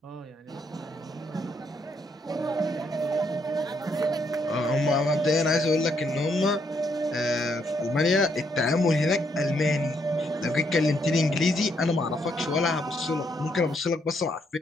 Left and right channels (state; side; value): normal; both; correlation 0.74